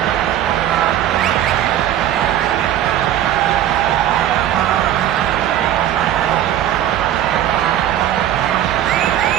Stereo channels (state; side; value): quieter; left; 11.7 dB